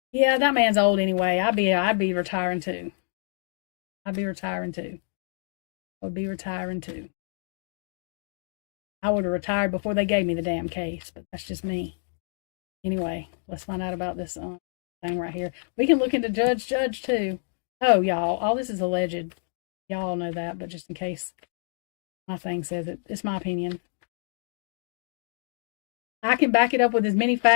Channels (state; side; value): silent; right; digital silence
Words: Yeah, that man's old anyway. I'd be retiring too. I'd be retiring too. I'd be retiring too. I would have retired before they gave me the damn case, but that's just me. Anyway, let's find out about this thing right here. We can look into Judge too. Oh, y'all, all this is alleged. Y'all know that, but just in case my thing says it, it's my opinion. I can back it up with as many